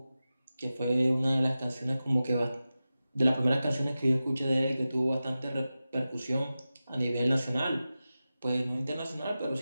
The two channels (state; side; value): inverted; both; correlation -0.94